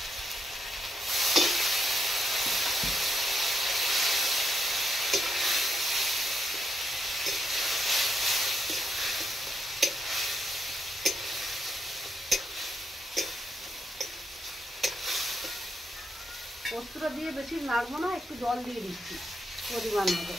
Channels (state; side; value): normal; both; correlation 0.80